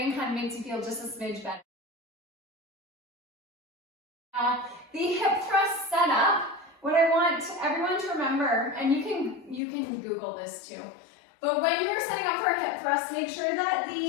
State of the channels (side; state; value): right; drops out; at 9.6 s